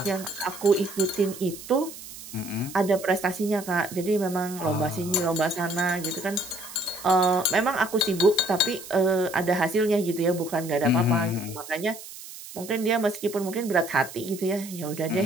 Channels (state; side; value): noise; right; hiss, 14 dB below the sound